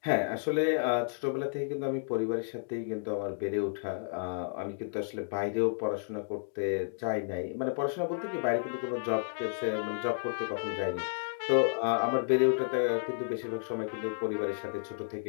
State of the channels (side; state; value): right; silent; digital silence